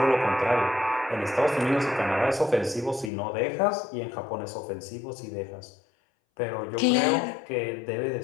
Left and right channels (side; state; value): right; drops out; at 3.1 s